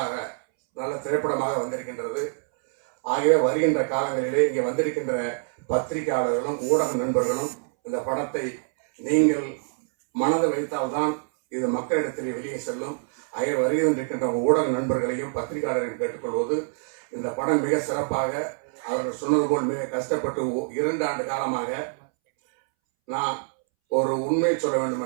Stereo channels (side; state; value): left; silent; 61 dB below the other